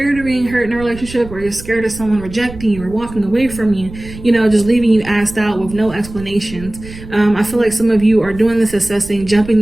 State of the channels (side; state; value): right; noise; rumble, 15 dB below the sound